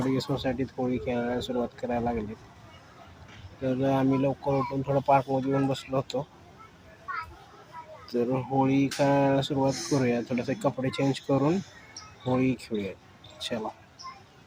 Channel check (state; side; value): identical; both; correlation 1.00